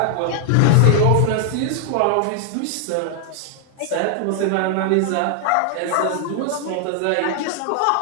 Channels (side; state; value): both; different; correlation 0.00